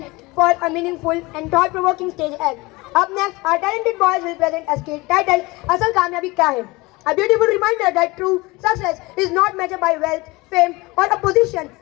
for a meaningful and thought-provoking stage act. Up next, our talented boys will present a skit titled Asal Kamyabi Kya Hai? A beautiful reminder that true success is not measured by wealth, fame or a position,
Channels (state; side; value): quieter; right; 23.0 dB